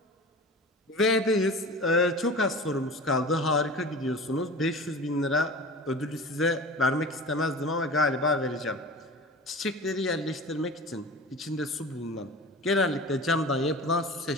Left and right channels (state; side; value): normal; both; correlation 0.35